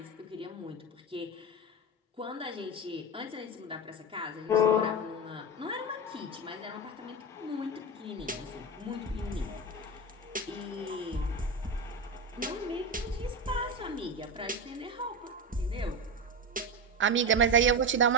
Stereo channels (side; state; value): both; normal; correlation 0.18